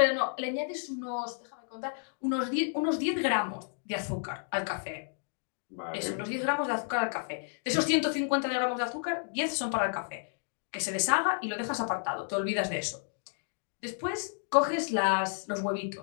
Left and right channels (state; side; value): silent; right; digital silence